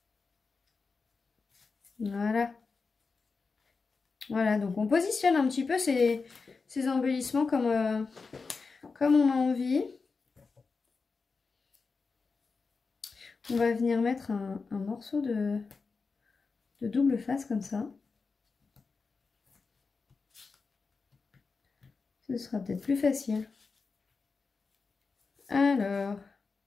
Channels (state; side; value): quieter; right; 4.6 dB